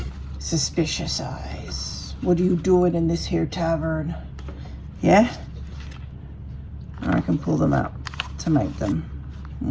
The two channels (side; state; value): both; identical; correlation 1.00